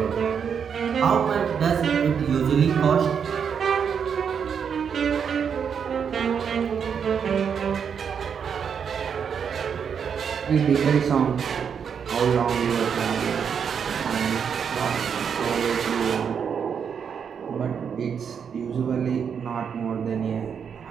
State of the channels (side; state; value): left; quieter; 7.1 dB